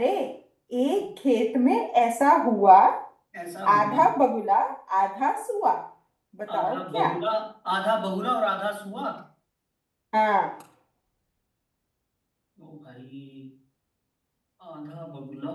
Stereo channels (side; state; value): both; identical; correlation 1.00